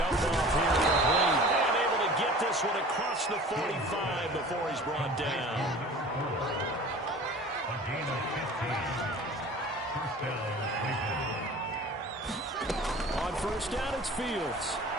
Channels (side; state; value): both; normal; correlation 0.42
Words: off here complete. And able to get this one across the 45 before he's brought down. A gain of 15. On 1st down, it's Fields.